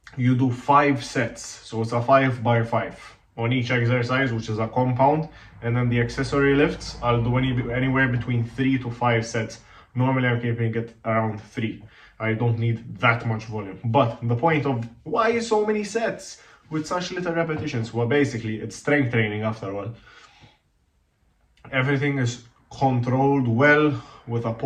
you do 5 sets. So it's a 5 by 5 on each exercise, which is a compound, and then the accessory lifts I'll do anywhere between 3 to 5 sets. Normally I'm keeping it around 3. I don't need that much volume. But the point of why so many sets with such little repetitions? Well, basically it's strength training after all. Everything is controlled well with a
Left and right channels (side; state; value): both; identical; correlation 1.00